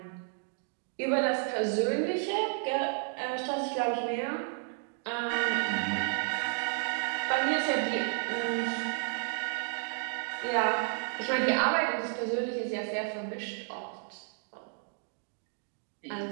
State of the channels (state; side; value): silent; left; 56 dB below the other